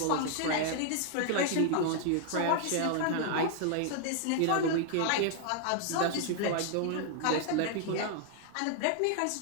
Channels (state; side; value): different; both; correlation 0.00